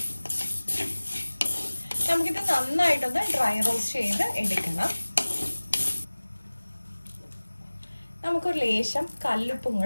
നമുക്കിത് നന്നായിട്ടൊന്ന് ഡ്രൈ റോസ്റ്റ് ചെയ്ത് എടുക്കണം. നമുക്കൊരു ലേശം കല്ലുപ്പും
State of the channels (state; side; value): inverted; both; correlation -1.00